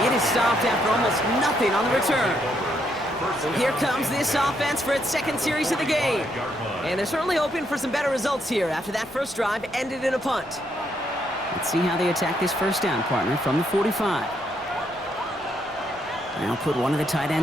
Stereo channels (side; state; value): left; noise; rumble, 26 dB below the sound